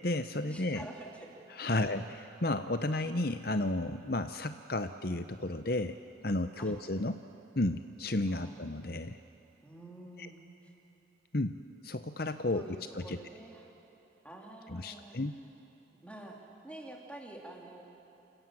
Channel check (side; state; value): both; normal; correlation 0.50